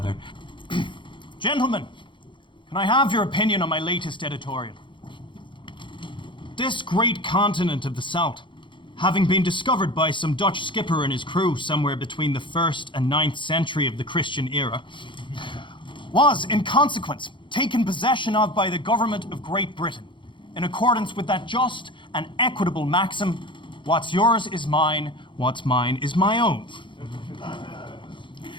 Gentlemen, can I have your opinion on my latest editorial? This great continent of the South, having been discovered by some Dutch skipper and his crew somewhere between the 1st and 9th century of the Christian era, was, in consequence, taken possession of by the government of Great Britain, in accordance with that just and equitable maxim, what's yours is mine, what's mine is my own.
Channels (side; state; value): right; late; 0.24 ms